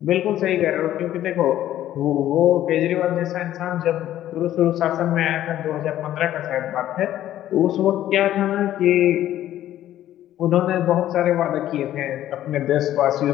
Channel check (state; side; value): quieter; right; 12.7 dB